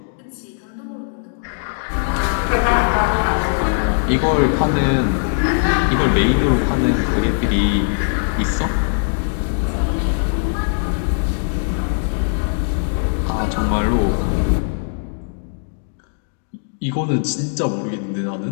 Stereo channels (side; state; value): right; silent; digital silence